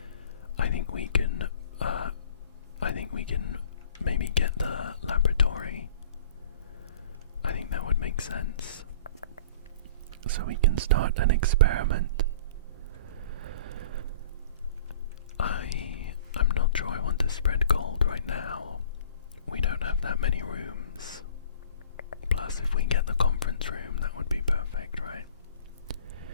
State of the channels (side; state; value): both; inverted; correlation -0.46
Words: I think we can maybe get the laboratory. I think that would make sense. So we can start an experiment. I'm not sure I want to spread gold right now. We don't have that many rooms. Plus, if we get the conference room, that would be perfect, right?